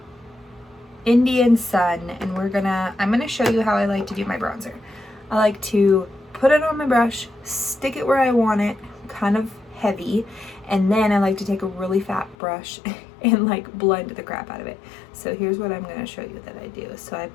Indian Sun, and I'm gonna show you how I like to do my bronzer. I like to put it on my brush, stick it where I want it, kind of heavy, and then I like to take a really fat brush and like blend the crap out of it. So here's what I'm gonna show you that I do. So I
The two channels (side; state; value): right; drops out; at 12.4 s